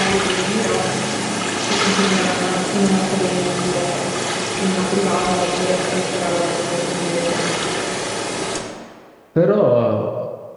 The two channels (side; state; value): both; identical; correlation 1.00